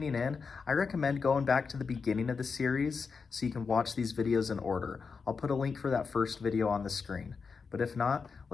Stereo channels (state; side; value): quieter; right; 5.2 dB